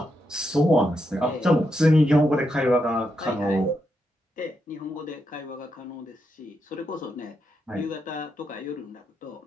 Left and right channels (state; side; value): normal; both; correlation 0.83